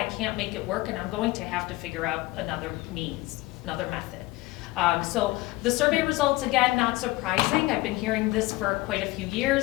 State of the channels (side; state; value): right; quieter; 19.9 dB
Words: can't make it work and I'm going to have to figure out another means, another method. So the survey results, again, not surprising. I've been hearing this for quite a few